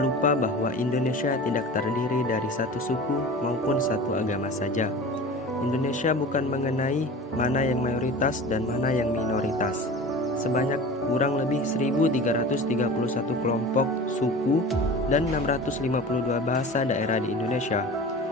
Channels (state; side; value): normal; both; correlation 0.36